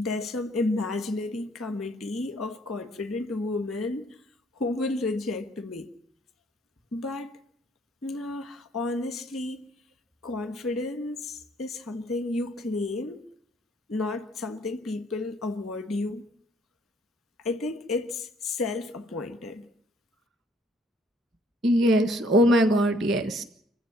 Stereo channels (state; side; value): normal; both; correlation 0.63